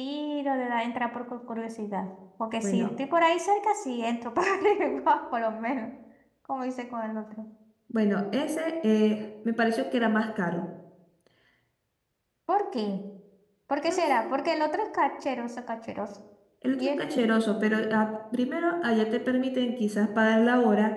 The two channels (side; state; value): both; identical; correlation 1.00